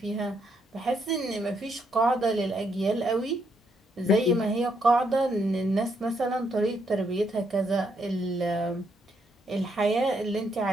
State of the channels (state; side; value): normal; both; correlation 0.75